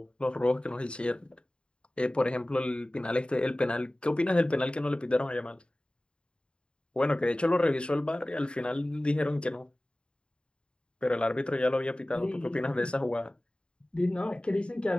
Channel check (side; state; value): right; late; 0.053 ms